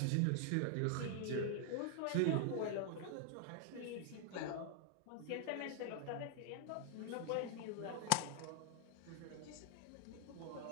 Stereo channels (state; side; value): different; both; correlation 0.00